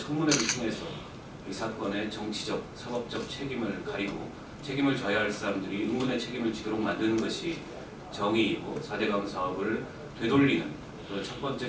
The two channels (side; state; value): both; identical; correlation 1.00